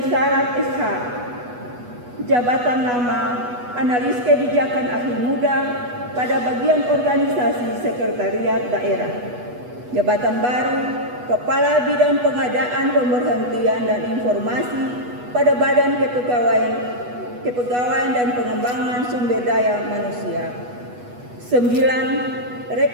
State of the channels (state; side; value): late; left; 8.2 ms